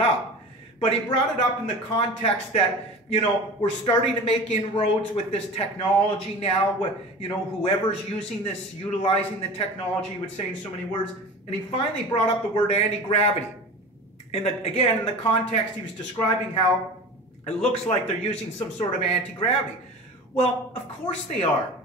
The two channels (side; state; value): both; normal; correlation 0.34